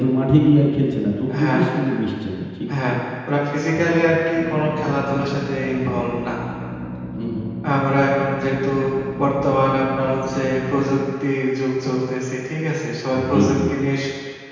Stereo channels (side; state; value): both; identical; correlation 1.00